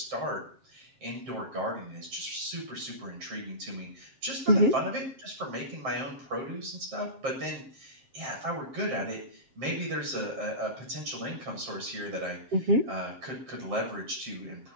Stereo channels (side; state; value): left; late; 7.5 ms